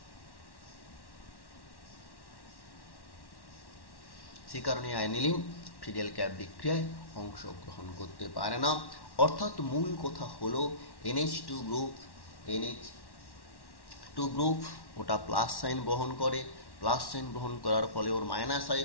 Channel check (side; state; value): right; late; 1.1 ms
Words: সে কারণে অ্যানিলিন ফিডেল ক্যাপ বিক্রিয়ায় অংশগ্রহণ করতে পারে না। অর্থাৎ মূল কথা হলো NH2 গ্রুপ ওটা প্লাস সাইন বহন করে, প্লাস সাইন বহন করার ফলে ওর মাইনাস আই